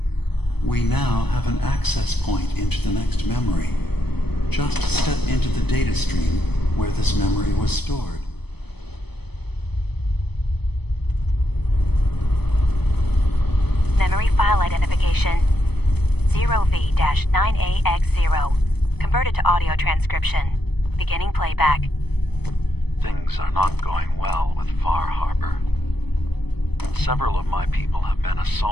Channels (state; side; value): late; right; 0.98 ms